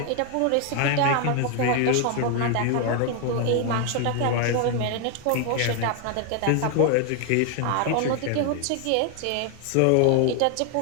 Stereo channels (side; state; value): both; different; correlation 0.00